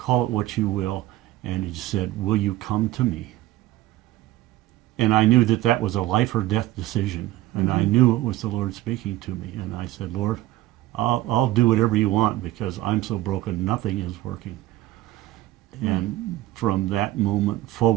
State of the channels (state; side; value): quieter; left; 15.8 dB